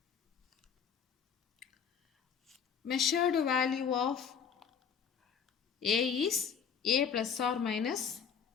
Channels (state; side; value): quieter; right; 7.0 dB